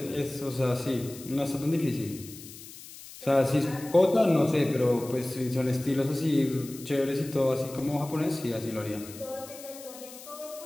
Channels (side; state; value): left; noise; hiss, 16 dB below the sound